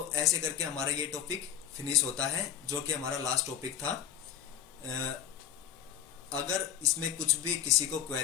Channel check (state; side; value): quieter; right; 9.6 dB